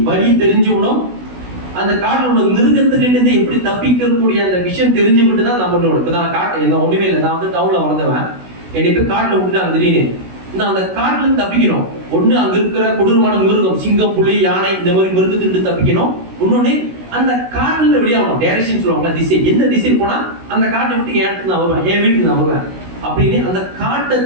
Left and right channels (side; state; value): left; late; 16 ms